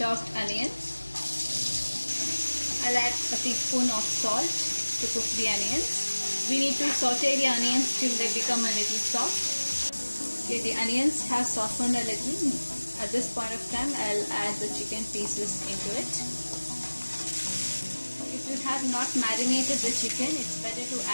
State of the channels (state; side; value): inverted; both; correlation -1.00